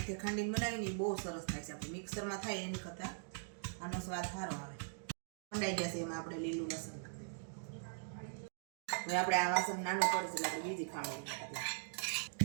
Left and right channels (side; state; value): left; silent; digital silence